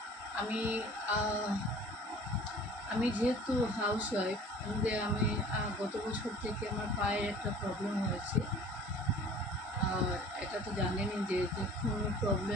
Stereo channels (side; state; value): both; normal; correlation 0.47